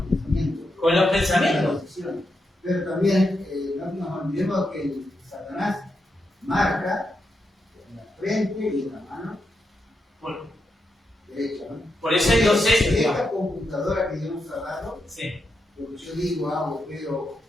pensamiento. Con los Con la pensamientos. decisión. Pero también no nos olvidemos que Satanás marca en la frente y en la mano derecha, ¿no? Por eso hay 2 sellos. Esta computadora que Dios nos ha dado, Sí. lo que yo digo, hago, veo,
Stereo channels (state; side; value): normal; both; correlation 0.84